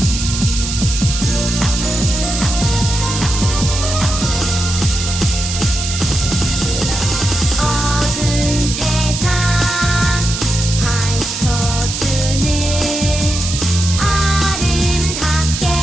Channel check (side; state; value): right; noise; hiss, 5 dB below the sound